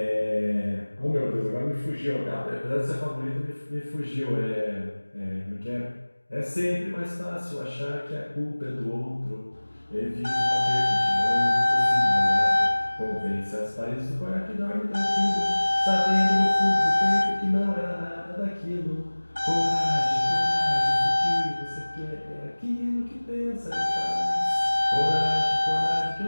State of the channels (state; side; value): inverted; both; correlation -1.00